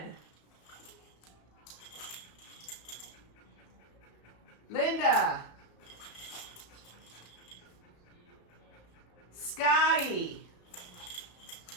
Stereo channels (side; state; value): right; late; 34 ms